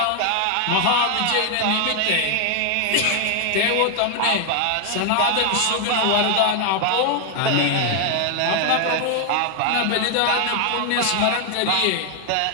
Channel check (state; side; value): different; both; correlation 0.00